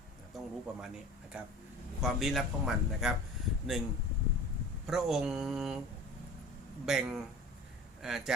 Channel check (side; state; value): both; normal; correlation 0.40